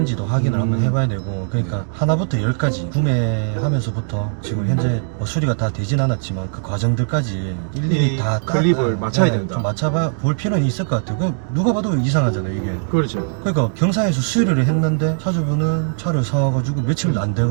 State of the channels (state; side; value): silent; left; digital silence